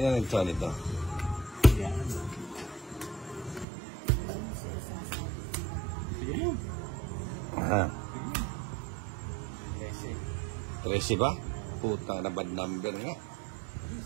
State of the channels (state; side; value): drops out; left; at 3.7 s